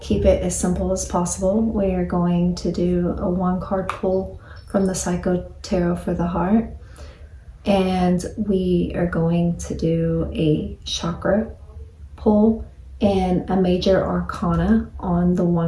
keep it as simple as possible. We are going to do a one-card pull from the Psycho Tarot for the Heart, and we are going to do a chakra pull and a major arcana on the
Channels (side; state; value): both; identical; correlation 1.00